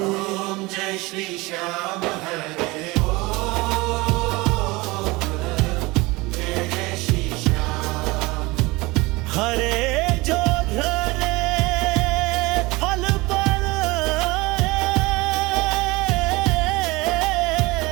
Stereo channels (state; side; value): quieter; left; 22.8 dB